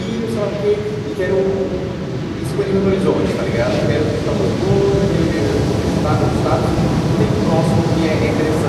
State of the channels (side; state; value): both; identical; correlation 1.00